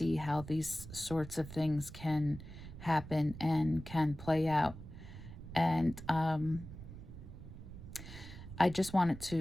how these sorts of things can happen and can play out. And I just wanted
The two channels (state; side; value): noise; right; rumble, 13 dB below the sound